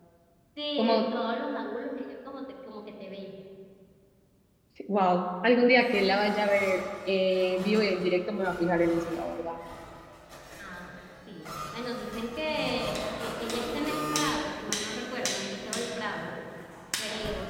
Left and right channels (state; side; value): identical; both; correlation 1.00